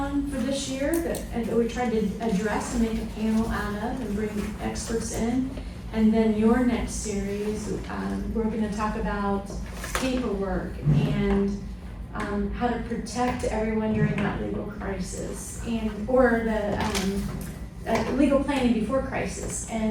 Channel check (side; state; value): both; identical; correlation 1.00